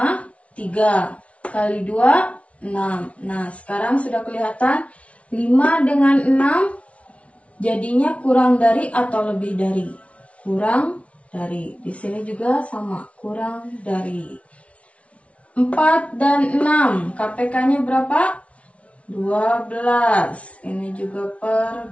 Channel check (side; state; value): right; late; 0.063 ms